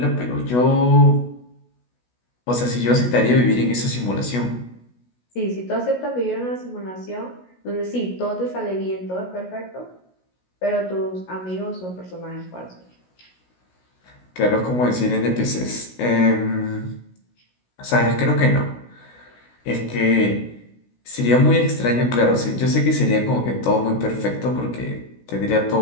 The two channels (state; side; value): late; right; 16 ms